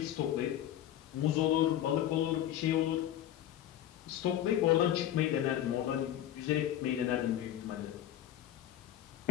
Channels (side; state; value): right; quieter; 11.8 dB